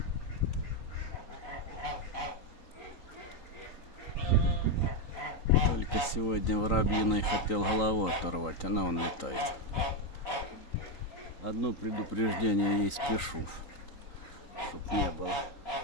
Только сегодня воробьиной хотел голову оторвать, она вон летает. Одно предупреждение ей спешу, чтоб не было.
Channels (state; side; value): late; right; 3.9 ms